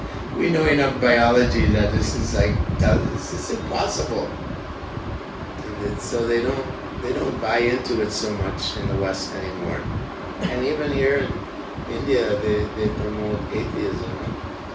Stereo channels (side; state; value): both; identical; correlation 1.00